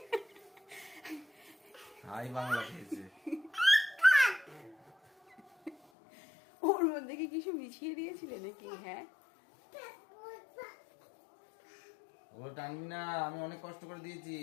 হাই বাংলা খেয়েছে। ওর মধ্যে কি কিছু মিশিয়ে দিয়েছিলে নাকি? হ্যাঁ, ওগুলো টানবি না, আমি অনেক কষ্ট করে দিয়েছি।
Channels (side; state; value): right; drops out; at 5.8 s